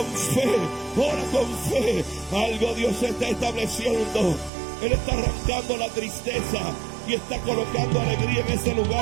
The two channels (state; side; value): drops out; left; at 4.5 s